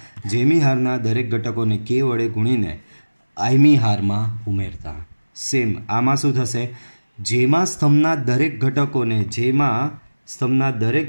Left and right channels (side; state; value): both; inverted; correlation -1.00